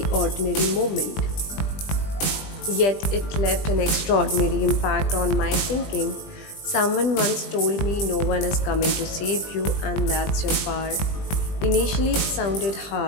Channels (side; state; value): right; late; 20 ms